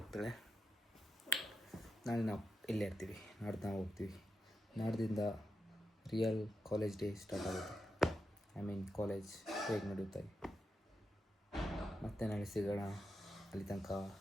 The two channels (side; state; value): both; normal; correlation 0.87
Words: ನಾಳೆ ನಾವು ಇಲ್ಲೇ ಇರ್ತೀವಿ, ನಾಡ್ದು ನಾವು ಹೋಗ್ತೀವಿ. ನಾಡ್ದಿಂದ ರಿಯಲ್ ಕಾಲೇಜ್ ಡೇ ಸ್ಟಾರ್ಟ್ ಆಗುತ್ತೆ. ಐ ಮೀನ್ ಕಾಲೇಜ್ ಹೇಗೆ ನಡೆಯುತ್ತೆ. ಮತ್ತೆ ನಾಳೆ ಸಿಗೋಣ. ಅಲ್ಲಿ ತನಕ